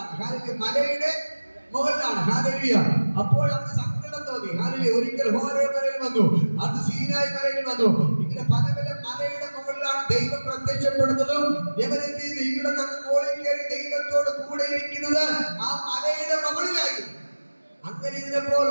മലയുടെ മുകളിലാണ്. ഹല്ലേലൂയ. അപ്പോൾ അവന് സങ്കടം തോന്നി. ഹല്ലേലൂയ. ഒരിക്കൽ ഹോരേബ് മലയിൽ വന്നു, അത് സീനായി മലയിൽ വന്നു. ഇങ്ങനെ പല പല മലയുടെ മുകളിലാണ് ദൈവം പ്രത്യക്ഷപ്പെടുന്നതും എവരെന്ത് ചെയ്ത് ഇവിടെ നിന്ന് മുകളിൽ കയറി ദൈവത്തോട് കൂടെ ഇരിക്കുന്നത് ആ മലയുടെ മുകളിലായിരുന്നു. അങ്ങനെ ഇരുന്നപ്പോൾ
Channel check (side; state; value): both; inverted; correlation -1.00